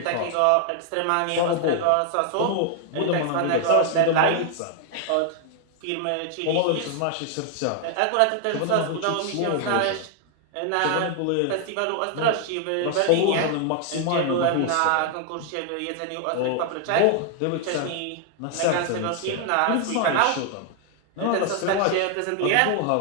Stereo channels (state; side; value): different; both; correlation 0.00